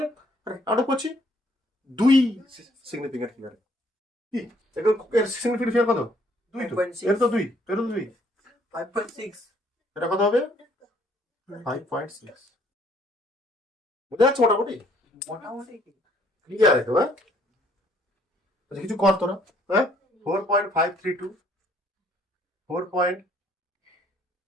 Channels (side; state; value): both; normal; correlation 0.64